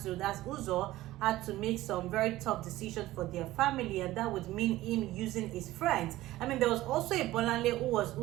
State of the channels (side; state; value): left; quieter; 16.4 dB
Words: Uzor, had to make some very tough decisions for their family, and that would mean him using his friends. I mean, there was also a Bolanle who was